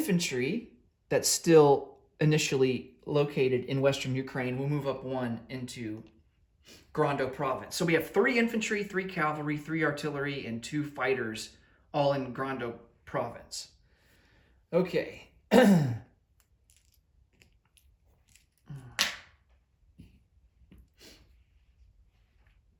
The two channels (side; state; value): both; identical; correlation 1.00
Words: that's still initially located in western Ukraine will move up 1 into Grando Province. So we have 3 infantry, 3 cavalry, 3 artillery, and 2 fighters all in Grando Province. Okay.